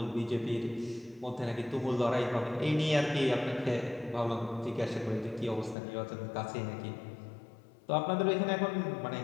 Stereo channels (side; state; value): right; drops out; at 5.8 s